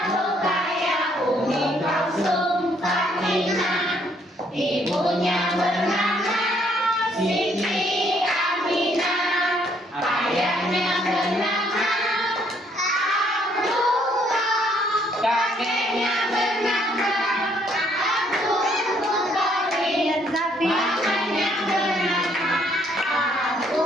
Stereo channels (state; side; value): normal; both; correlation 0.67